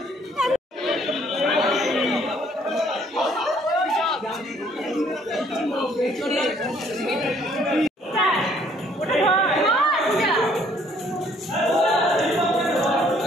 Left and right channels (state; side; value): normal; both; correlation 0.62